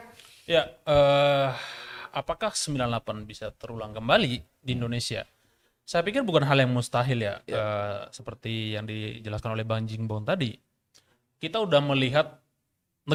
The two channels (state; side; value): identical; both; correlation 1.00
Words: ya, apakah 98 bisa terulang kembali di Indonesia? Saya pikir bukan hal yang mustahil ya, seperti yang dijelaskan oleh Bang Jingbong tadi. Kita udah melihat